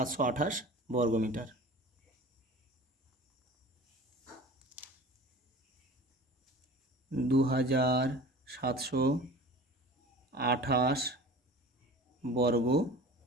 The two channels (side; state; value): both; normal; correlation 0.40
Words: বর্গ মিটার। 2728 বর্গ